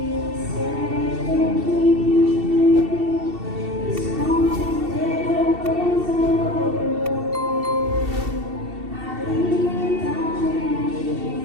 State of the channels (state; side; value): late; left; 2.7 ms